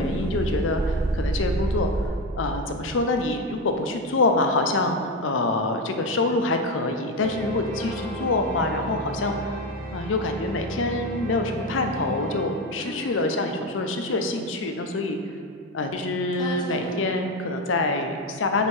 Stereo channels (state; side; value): normal; both; correlation 0.14